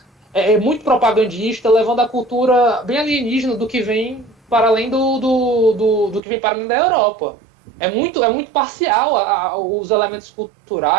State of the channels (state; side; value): drops out; left; at 6.2 s